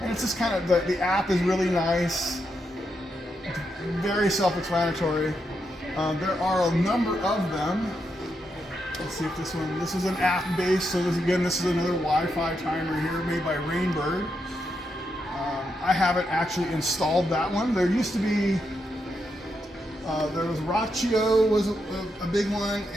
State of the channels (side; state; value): both; normal; correlation 0.83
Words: it's just kind of, the app is really nice, very self-explanatory. There are a number of them. Let's see if this is an app based, so this is another Wi-Fi timer here made by Rainbird. I haven't actually installed that one. There used to be, there was Rachio was a big one,